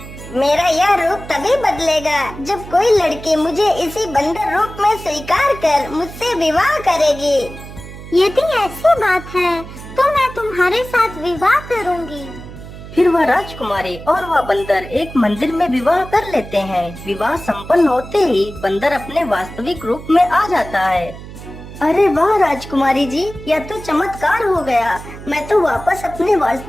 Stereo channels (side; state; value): right; noise; hum, 14 dB below the sound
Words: मेरा यह रूप तभी बदलेगा जब कोई लड़की मुझे इसी बंदर रूप में स्वीकार कर मुझसे विवाह करेगी। यदि ऐसी बात है तो मैं तुम्हारे साथ विवाह करूंगी। फिर वह राजकुमारी और वह बंदर एक मंदिर में विवाह कर लेते हैं। विवाह संपन्न होते ही बंदर अपने वास्तविक रूप में आ जाता है। अरे वाह राजकुमारी जी, यह तो चमत्कार हो गया। मैं तो वापस अपने